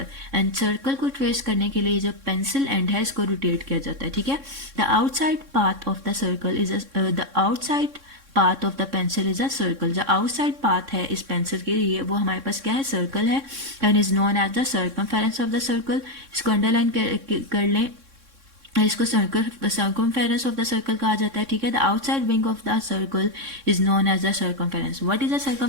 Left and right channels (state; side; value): late; left; 3.6 ms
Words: And circle को ट्रेस करने के लिए जो पेंसिल एंड है इसको रोटेट किया जाता है. ठीक है, the outside path of the circle is the outside path of the pencil is a circle. जो आउटसाइड पाथ है इस पेंसिल के लिए वो हमारे पास क्या है? सर्कल है. And is known as the circumference of the circle. इसको अंडरलाइन कर लें, इसको सर्कमफेरेंस ऑफ द सर्कल कहा जाता है. ठीक है, the outside wing of the circle is known as the circumference. What is the